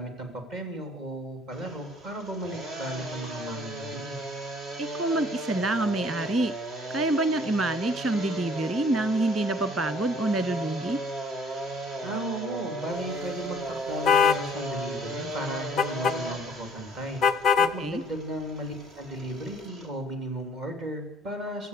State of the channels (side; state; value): both; normal; correlation 0.56